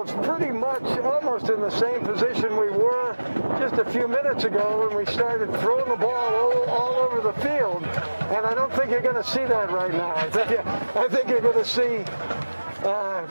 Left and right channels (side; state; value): both; inverted; correlation -1.00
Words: pretty much almost in the same position we were just a few minutes ago when we started throwing the ball all over the field. And I don't think you're going to see that right now. I think you're going to see